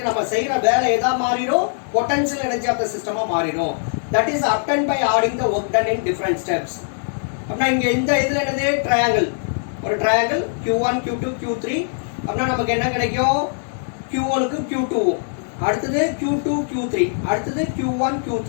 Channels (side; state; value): right; silent; digital silence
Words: நம்ம செய்யற வேலை எதா மாறிடும், பொட்டன்ஷியல் எனர்ஜி ஆஃப் த சிஸ்டமா மாறிடும். That is obtained by adding the work done in different steps. அப்படின்னா இங்க இந்த இதுல என்னது ட்ரையாங்கிள், ஒரு ட்ரையாங்கிள் Q1 Q2 Q3. அப்படின்னா நமக்கு என்ன கிடைக்கும், Q1 க்கு Q2, அடுத்தது Q2 Q3, அடுத்தது Q1